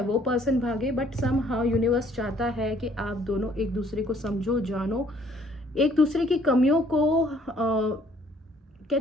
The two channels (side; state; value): both; normal; correlation 0.61